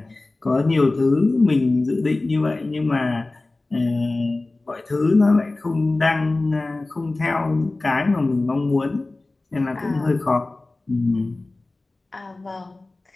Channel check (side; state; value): right; quieter; 3.1 dB